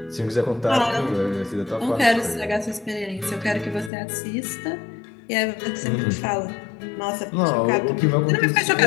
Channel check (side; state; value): right; drops out; at 3.9 s